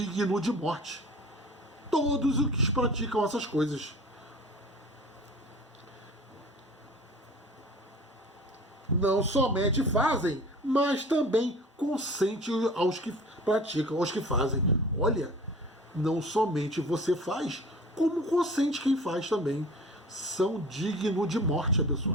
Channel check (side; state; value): both; normal; correlation 0.42